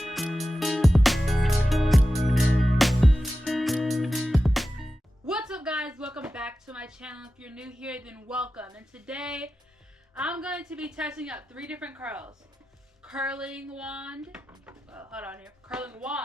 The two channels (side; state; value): both; normal; correlation 0.93